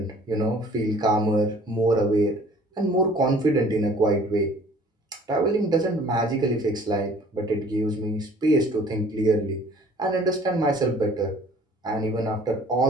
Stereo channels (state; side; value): normal; both; correlation 0.53